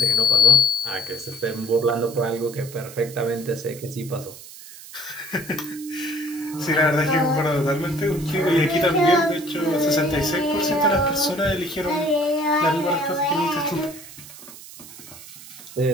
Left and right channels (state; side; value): noise; right; hiss, 17 dB below the sound